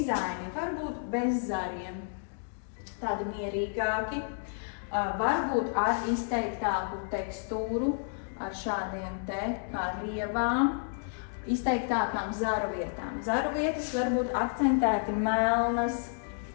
var būt bez zariem, tādi mierīgāki, varbūt ar izteiktāku tekstūru, ar šādiem te kā rievām, izteiktākām zaru vietām. Zaru vietas var būt akcentēti melnas,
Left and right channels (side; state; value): right; silent; digital silence